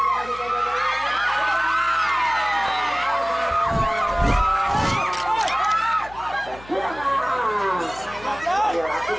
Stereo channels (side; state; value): left; noise; hum, 19 dB below the sound